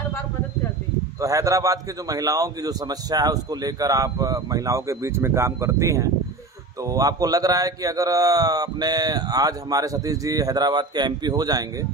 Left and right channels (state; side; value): quieter; left; 3.3 dB